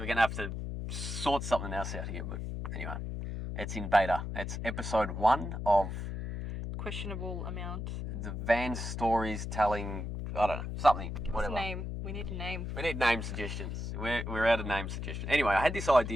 to have to sort something else out here, but anyway. It's in beta. It's episode 1 of Questionable amount. the van stories telling, I don't know, something, Give whatever. us a name. We need a name. We need name suggestions. We're out of name suggestions. Anyway, I had this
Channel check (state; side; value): noise; left; hum, 5 dB below the sound